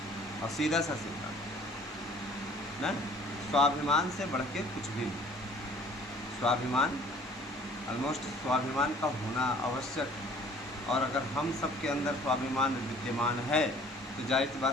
और सीधा सा सीधा ना। स्वाभिमान से बढ़ के कुछ भी नहीं। स्वाभिमान, ऑलमोस्ट स्वाभिमान का होना आवश्यक। और अगर हम सब के अंदर स्वाभिमान विद्यमान है तो जाहिर सी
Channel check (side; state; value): both; normal; correlation 0.53